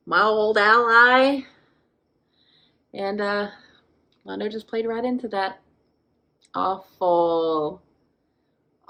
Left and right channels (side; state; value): both; identical; correlation 1.00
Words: my old ally. And Londo just played right into that. Awful.